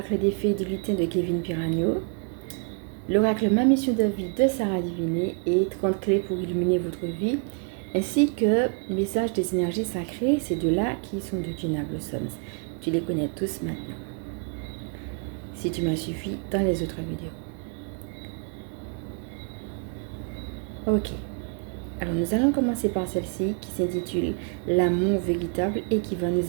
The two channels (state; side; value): quieter; left; 39.7 dB